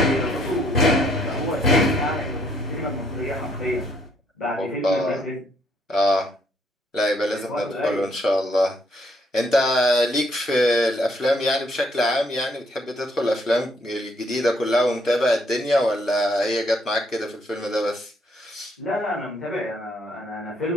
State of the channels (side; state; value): both; normal; correlation 0.68